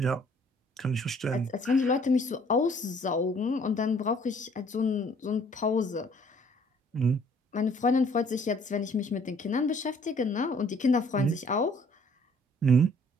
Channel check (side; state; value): both; normal; correlation 0.59